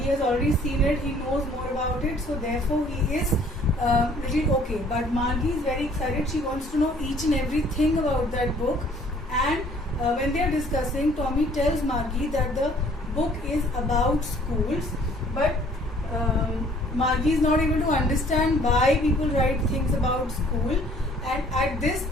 he has already seen it, he knows more about it, so therefore he is little okay. But Margie is very excited, she wants to know each and everything about that book, and when they are discussing, Tommy tells Margie that the book is about schools, but Margie is not able to understand why people write things about school. And at this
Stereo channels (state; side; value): normal; both; correlation 0.57